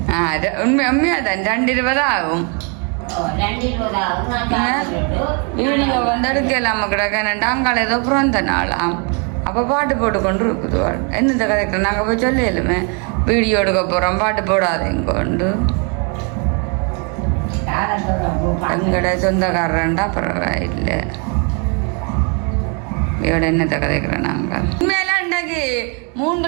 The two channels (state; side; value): quieter; left; 36.0 dB